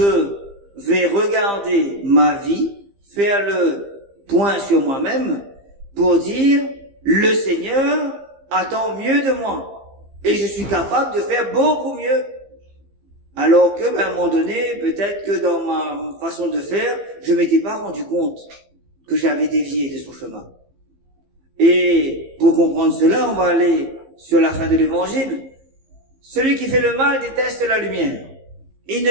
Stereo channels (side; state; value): left; late; 15 ms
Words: vais regarder ma vie, faire le point sur moi-même pour dire, le Seigneur attend mieux de moi. Et je suis capable de faire beaucoup mieux. Alors que, à un moment donné, peut-être que dans ma façon de faire, je m'étais pas rendu compte que j'avais dévié de son chemin. Et pour comprendre cela, on va aller sur la fin de l'évangile. Celui qui fait le mal déteste la lumière. Il ne